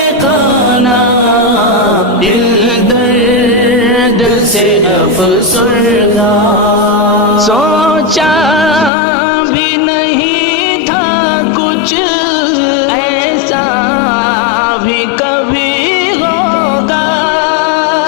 دل درد سے افسردہ سوچا بھی نہیں تھا کچھ ایسا بھی کبھی ہوگا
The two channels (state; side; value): drops out; right; at 8.9 s